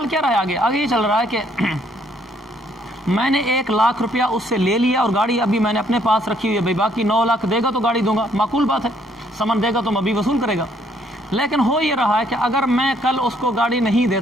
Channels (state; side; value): normal; both; correlation 0.67